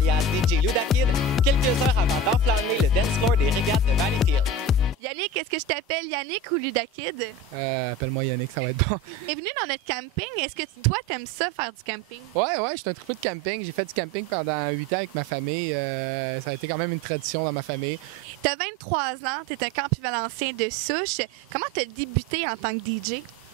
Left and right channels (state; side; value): normal; both; correlation 0.31